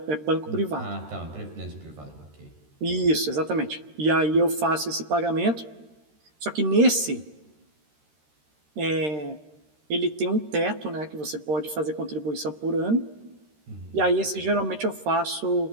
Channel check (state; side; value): late; left; 13 ms